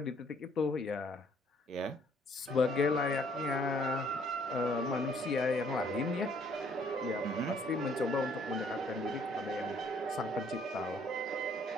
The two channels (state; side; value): normal; both; correlation 0.63